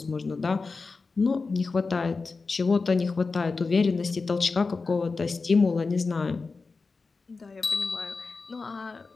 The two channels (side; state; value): right; quieter; 4.2 dB